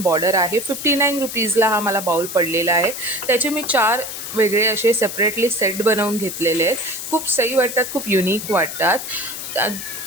बॉर्डर आहे. 59 रुपीजला हा मला बाउल पडलेला आहे. त्याचे मी 4 वेगळे असे सेपरेटली सेट बनवून घेतलेले आहेत. खूप सही वाटतात, खूप युनिक वाटतात.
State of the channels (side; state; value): left; noise; hiss, 8 dB below the sound